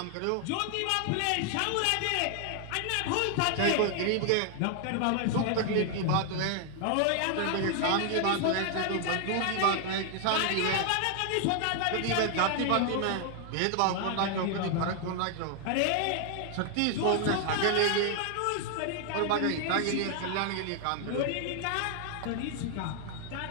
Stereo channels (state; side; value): different; both; correlation 0.00